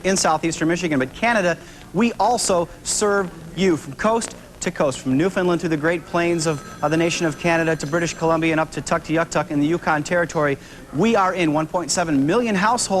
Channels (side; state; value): both; identical; correlation 1.00